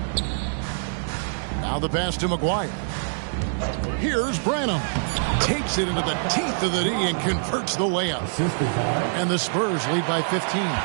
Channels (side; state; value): left; silent; 62 dB below the other